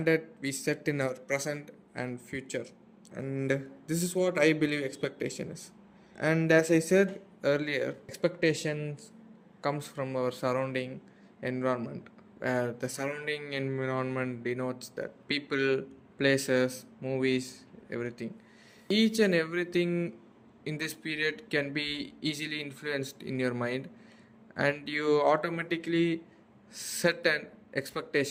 we set in our present and future. And this is what I believe expectation is. And as I said earlier, expectations comes from our surrounding environment, where the surrounding environment denotes that people, places, movies, everything. Each and everything in this period can be easily influenced in your mind, and you automatically set an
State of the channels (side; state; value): both; identical; correlation 1.00